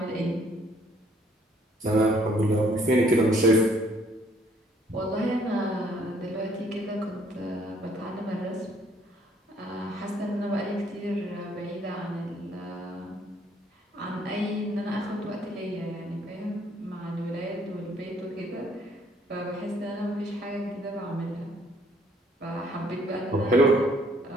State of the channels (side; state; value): both; normal; correlation 0.63